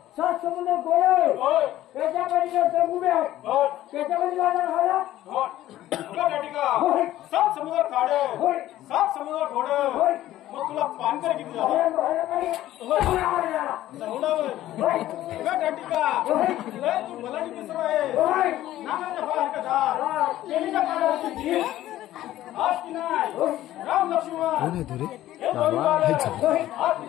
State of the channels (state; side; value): quieter; right; 14.1 dB